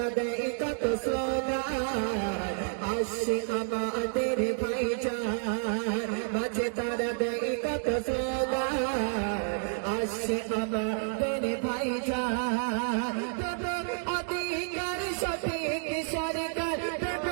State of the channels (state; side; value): silent; left; 58 dB below the other